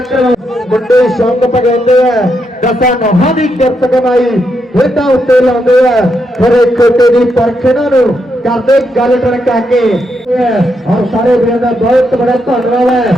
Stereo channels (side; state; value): both; normal; correlation 0.81